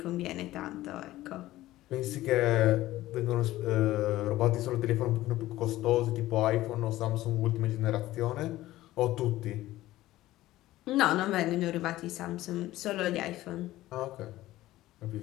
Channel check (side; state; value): right; quieter; 16.0 dB